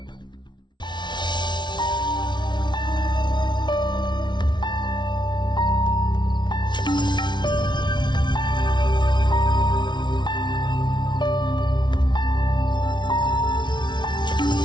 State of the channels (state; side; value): late; right; 0.22 ms